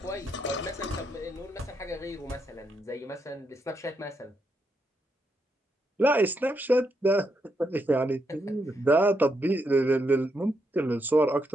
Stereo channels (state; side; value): normal; both; correlation 0.80